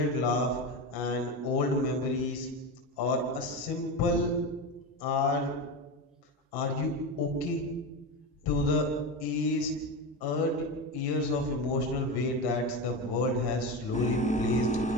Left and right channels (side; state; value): both; normal; correlation 0.20